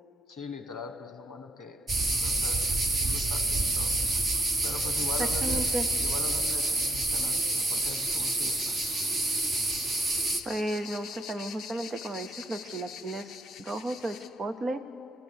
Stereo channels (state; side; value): normal; both; correlation 0.76